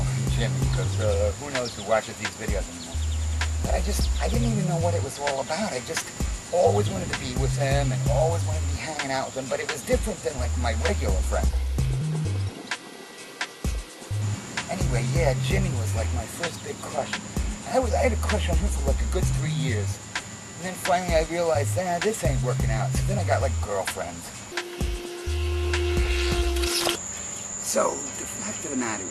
Jimmy, because who knows who watches these videos anymore. But I didn't even know what it was all about. I just always wanted to be with him and always wanted to be hanging out with him, but it was different than like my regular friend. Anyway, yeah, Jimmy was like my first big crush. I had a crush on him for like a good 3 years. And then finally I realized, this ain't working out. So then I got like girlfriends. So, the fact of the matter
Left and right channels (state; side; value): identical; both; correlation 1.00